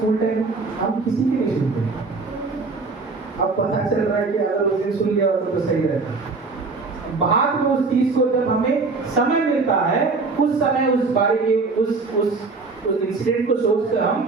टाइम, हम किसी की नहीं सुनते। अब पता चल रहा है कि अगर उस दिन सुन लिया होता तो सही रहता। बाद में उस चीज को जब हमें समय मिलता है, उस समय उस बारे के उस इंसिडेंट को सोचकर हम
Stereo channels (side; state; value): left; quieter; 4.0 dB